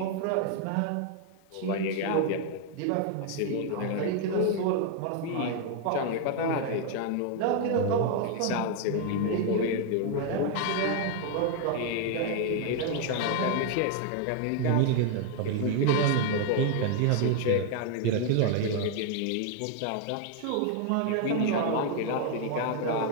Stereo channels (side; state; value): both; different; correlation 0.00